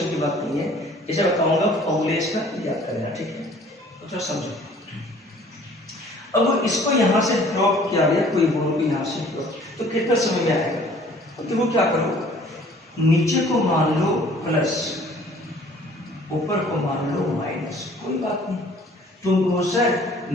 की बात नहीं है, इसे बताऊंगा फॉर्मूले इसका याद करना, ठीक है, तो थोड़ा समझो। अब इसको यहां से ड्रॉप किया गया, कोई बोलो भी यहां से ड्रॉप, तो कितना समय में आएगा, तो वो क्या करो, नीचे को मान लो प्लस, ऊपर को मान लो माइनस, कोई बात नहीं, तुम कहो सर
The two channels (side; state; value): both; normal; correlation 0.53